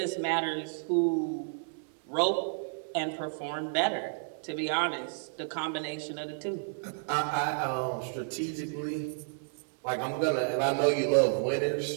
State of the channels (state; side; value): silent; left; digital silence